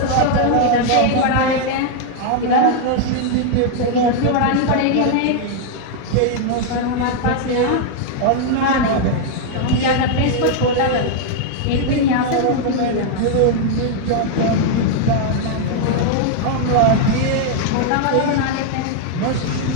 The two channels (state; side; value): different; both; correlation 0.00